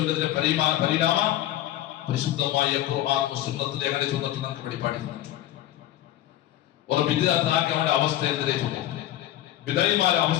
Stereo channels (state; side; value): quieter; right; 13.5 dB